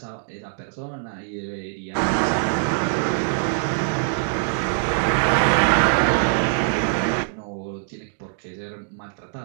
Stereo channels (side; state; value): left; silent; digital silence